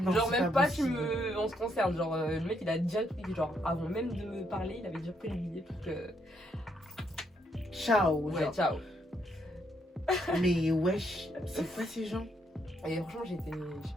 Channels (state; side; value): normal; both; correlation 0.74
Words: Genre c'est même pas possible. on se concerne. Genre le mec il a déjà pris, genre avant même de me parler, il avait déjà pris le billet pour que. Ciao. Ouais, genre. ciao. Mais wesh, c'est quoi ces gens? Et franchement j'étais, je sais